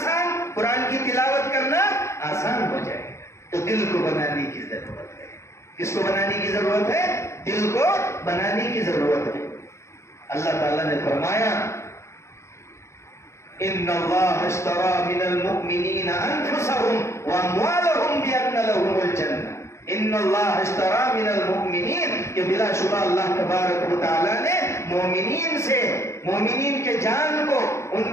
قرآن کی تلاوت کرنا آسان ہو جائے گا۔ تو دل کو بنانے کی ضرورت ہے۔ کس کو بنانے کی ضرورت ہے؟ دل کو بنانے کی ضرورت ہے۔ اللہ تعالیٰ نے فرمایا ان اللہ اشترى من المؤمنین انفسهم واموالهم بان لهم الجنہ۔ ان اللہ اشترى من المؤمنین، کہ بلا شبہ اللہ تبارک و تعالیٰ نے مومنین سے، مومنین کے جان کو، ان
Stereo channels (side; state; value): right; late; 0.14 ms